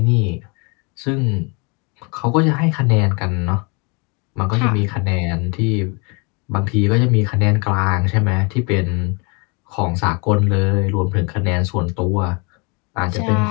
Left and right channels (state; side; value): quieter; right; 31.6 dB